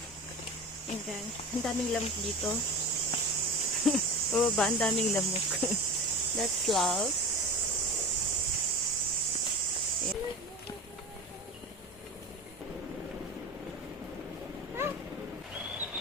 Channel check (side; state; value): both; normal; correlation 0.30